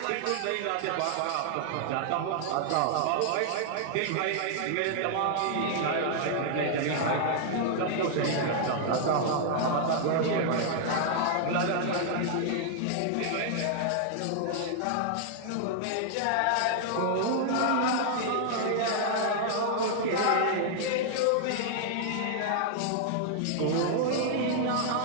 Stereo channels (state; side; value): different; both; correlation -0.01